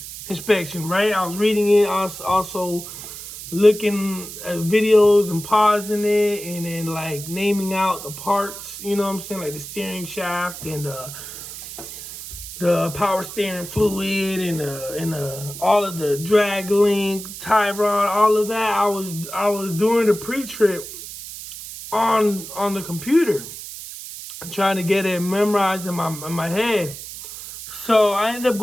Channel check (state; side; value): noise; right; hiss, 11 dB below the sound